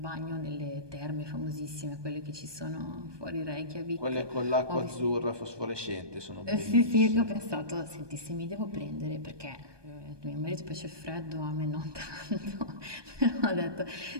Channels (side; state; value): left; late; 1.2 ms